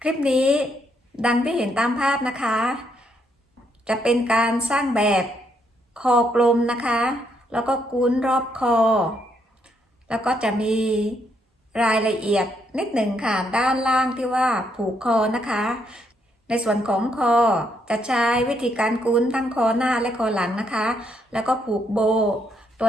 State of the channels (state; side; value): normal; both; correlation 0.75